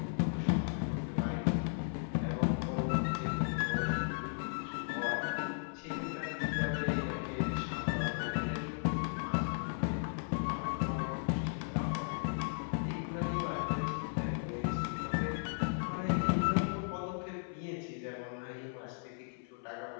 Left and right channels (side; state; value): right; silent; 54 dB below the other